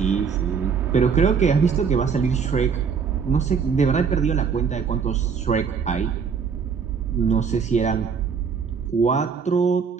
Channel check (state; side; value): quieter; left; 6.2 dB